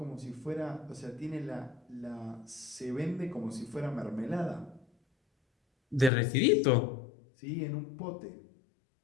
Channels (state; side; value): drops out; right; at 6.1 s